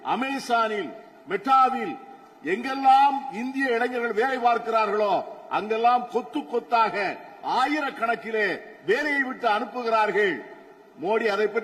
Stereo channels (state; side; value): identical; both; correlation 1.00